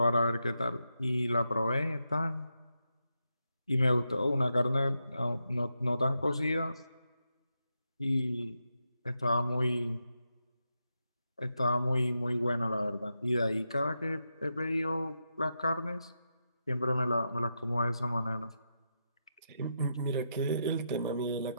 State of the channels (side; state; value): both; inverted; correlation -0.85